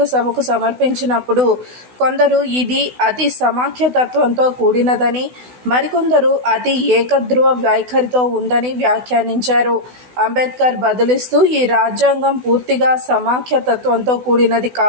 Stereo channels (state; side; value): late; left; 16 ms